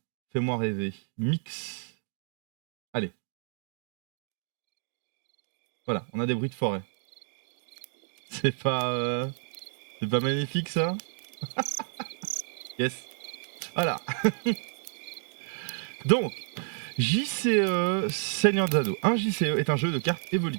Fais-moi rêver. Mix. Allez. Voilà, on a des bruits de forêt. C'est pas magnifique ça? Yes. Voilà. Donc, JCE Seigneur des Anneaux. Un JCE est un jeu de cartes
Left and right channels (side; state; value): left; silent; 58 dB below the other